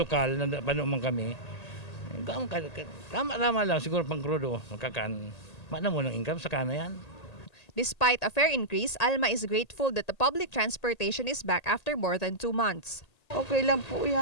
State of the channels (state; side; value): late; right; 1.8 ms